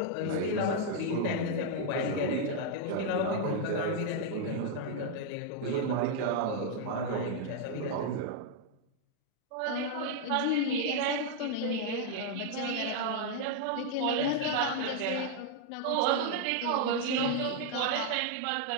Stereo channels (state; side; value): different; both; correlation 0.00